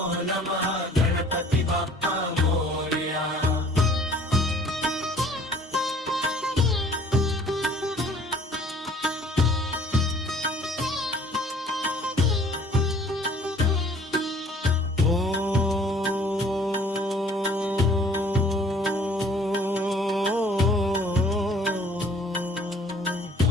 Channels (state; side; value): normal; both; correlation 0.54